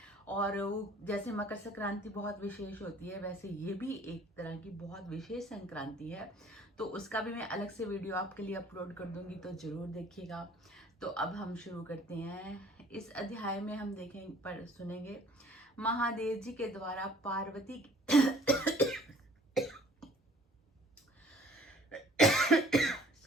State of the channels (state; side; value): normal; both; correlation 0.54